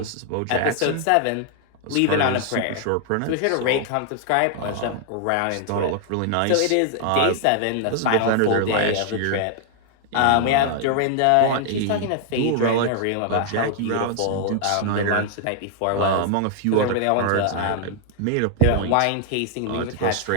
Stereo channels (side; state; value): both; different; correlation 0.00